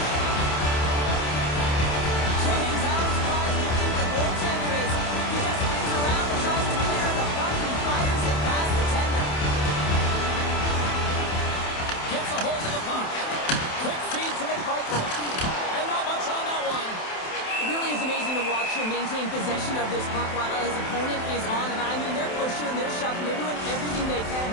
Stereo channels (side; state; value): right; late; 27 ms